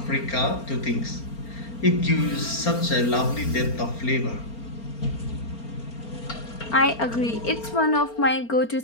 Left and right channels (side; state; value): right; late; 4.4 ms